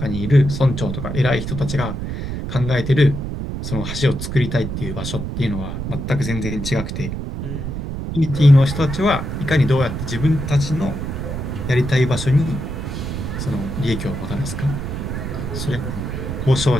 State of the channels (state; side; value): noise; right; rumble, 5 dB below the sound